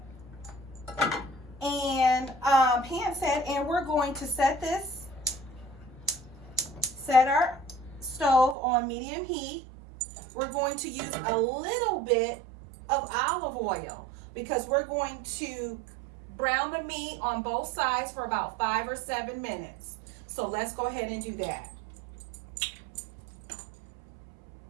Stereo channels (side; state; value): left; drops out; at 8.6 s